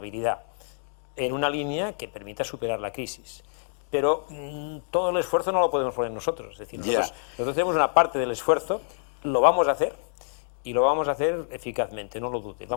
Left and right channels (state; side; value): silent; right; digital silence